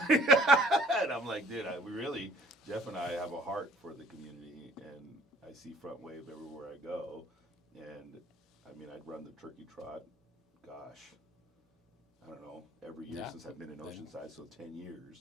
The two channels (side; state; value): both; normal; correlation 0.55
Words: And I'm like, dude, Jeff and I have a heart for the community, and I see Front Wave everywhere I go. And I mean, I'd run the turkey trot, gosh, I don't know, every year since I've been in Oceanside, so 10